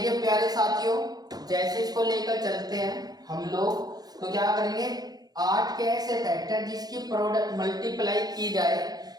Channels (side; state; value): left; late; 0.19 ms